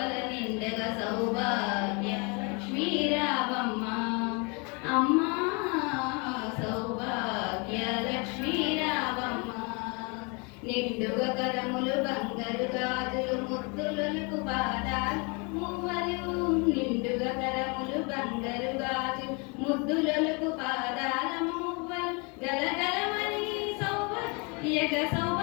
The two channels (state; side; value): quieter; right; 31.7 dB